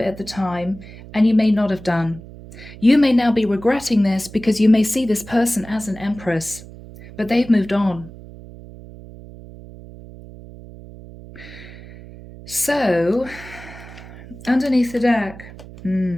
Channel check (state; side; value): noise; right; hum, 17 dB below the sound